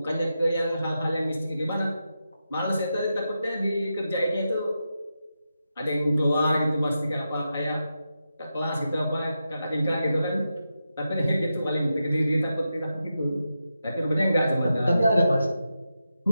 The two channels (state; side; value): inverted; both; correlation -0.88